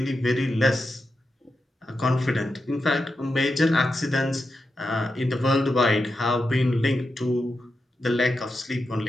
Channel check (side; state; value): both; normal; correlation 0.89